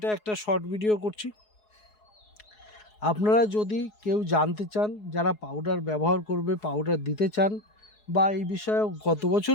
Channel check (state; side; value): late; right; 4.7 ms